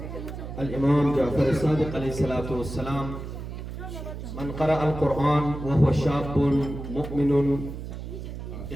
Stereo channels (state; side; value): noise; right; hum, 8 dB below the sound